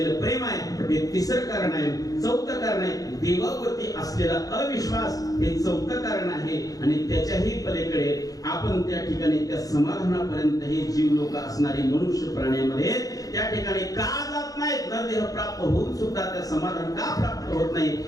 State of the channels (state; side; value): late; right; 0.17 ms